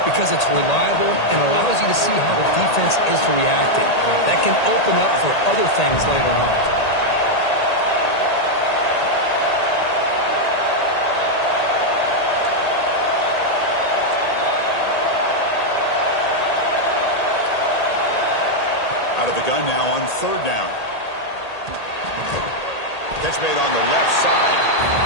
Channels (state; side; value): late; right; 1.8 ms